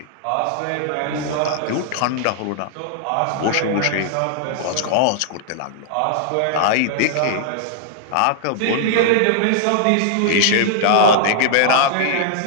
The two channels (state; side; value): different; both; correlation -0.01